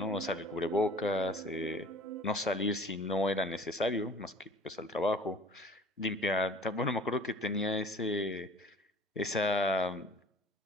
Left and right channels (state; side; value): normal; both; correlation 0.46